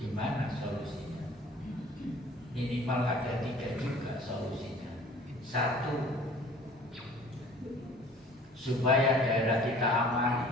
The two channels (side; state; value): both; normal; correlation 0.50